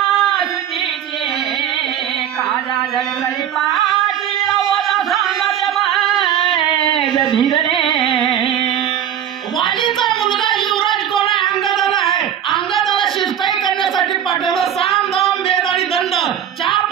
वालीचा मुलगा युवराज कोण आहे? अंगदाला आहे. अंगदाला शिष्टाई करण्यासाठी पाठवलं. साम दाम वेद आणि दंड 4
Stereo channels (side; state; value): left; quieter; 9.8 dB